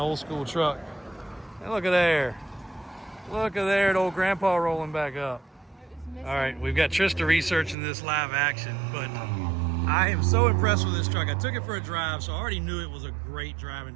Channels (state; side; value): drops out; left; at 7.8 s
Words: old school truck. And look at there. Look at there, the old grandpa rolling back up. All right, we've got Trista researching this live action, but I am so impressed with this truck. I took it for a drive, so I already knew it was a great driving